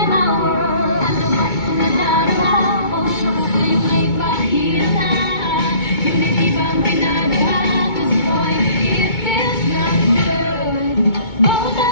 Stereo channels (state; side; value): late; right; 2.2 ms